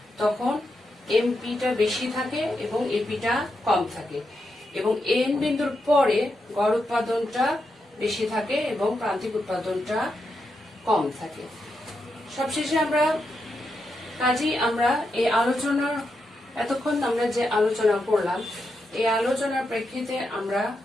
তখন MPটা বেশি থাকে এবং APটা কম থাকে এবং N বিন্দুর পরে গড় উৎপাদনটা বেশি থাকে এবং প্রান্তিক উৎপাদনটা কম থাকে। সবশেষে আমরা এই আলোচনার এতক্ষণ আমরা যে আলোচনা করলাম এই আলোচনার প্রেক্ষিতে আমরা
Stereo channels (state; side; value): normal; both; correlation 0.85